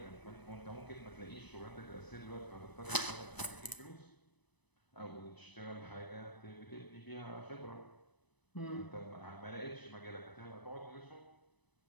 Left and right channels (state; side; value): late; right; 1.0 ms